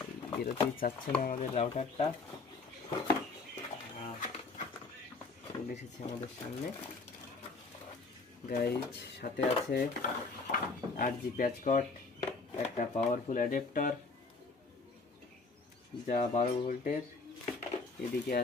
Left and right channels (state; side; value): quieter; right; 3.9 dB